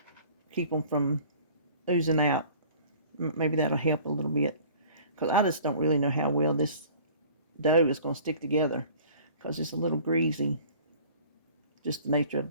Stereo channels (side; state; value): both; inverted; correlation -0.49